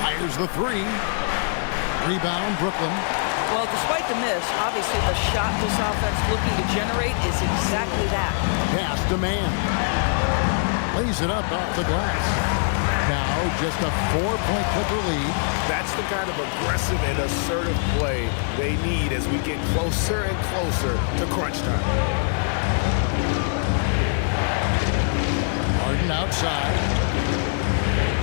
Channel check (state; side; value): silent; right; digital silence